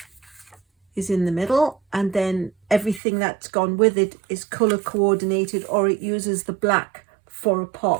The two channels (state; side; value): drops out; left; at 3.0 s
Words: is in the middle, and then everything that's gone with it is color coordinated, or it uses the black for a